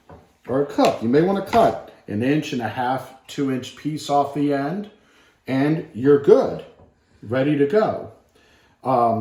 or a cook, you may want to cut 1.5 inch, 2 inch piece off the end, and you're good, ready to go.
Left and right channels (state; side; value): identical; both; correlation 1.00